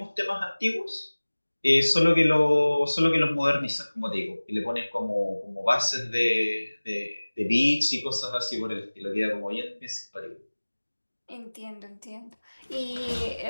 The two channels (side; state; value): both; inverted; correlation -1.00